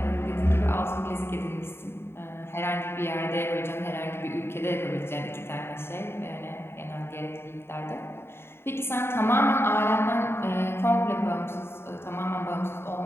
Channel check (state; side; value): late; right; 0.11 ms